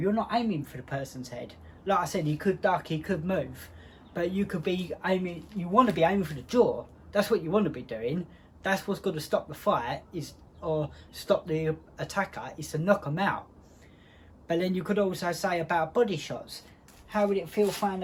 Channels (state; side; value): identical; both; correlation 1.00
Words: not aiming for the person's head. Like I said, he could duck, he could move, but you could be aiming, you want to be aiming for the jaw. That's what you want to be doing. That's what's going to stop the fight, or stop the attacker, is to knock them out. But then you could also say about body shots. How would it feel throwing